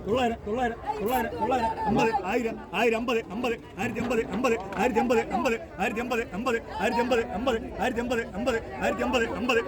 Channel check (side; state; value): both; identical; correlation 1.00